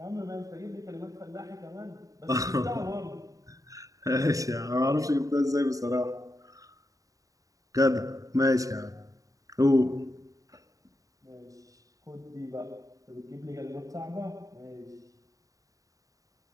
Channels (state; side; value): late; left; 0.16 ms